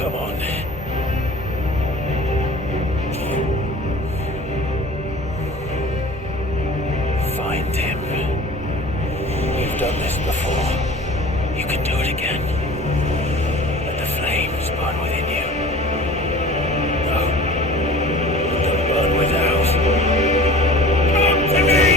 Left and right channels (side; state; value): both; normal; correlation 0.42